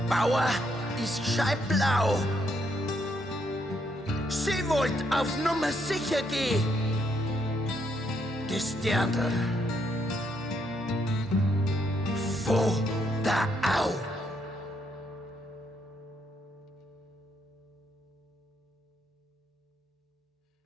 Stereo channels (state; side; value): normal; both; correlation 0.75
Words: Bauer ist scheiblau. Sie wollt auf Nummer sicher gehen. Das Dirndl vor der Au.